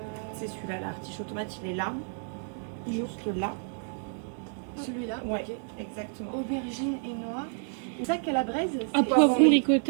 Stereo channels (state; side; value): silent; left; 58 dB below the other